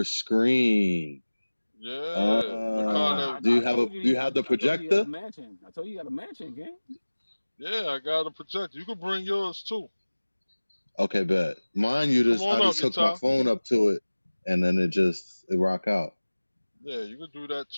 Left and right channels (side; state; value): both; inverted; correlation -1.00